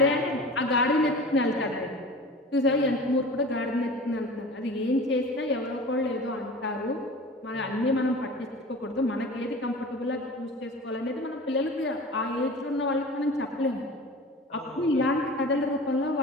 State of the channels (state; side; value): normal; both; correlation 0.37